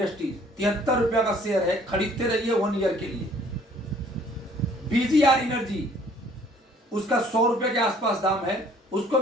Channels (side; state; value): both; normal; correlation 0.58